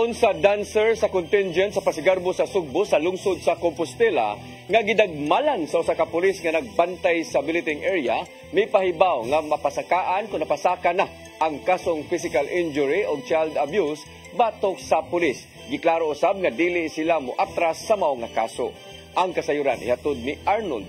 sa dancer sa contingent sa Pasigarbo sa Sugbo sa lungsod sa Compostela nga gidagmalan sa usa ka pulis nga nagbantay sa billeting area, may pahibaw nga mapasakaan kung napasaka na ang kasong physical injury o child abuse batok sa pulis. Giklaro usab nga dili sila moatras sa mao nga kaso. Ang kasayuran ihatod ni Arnold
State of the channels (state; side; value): identical; both; correlation 1.00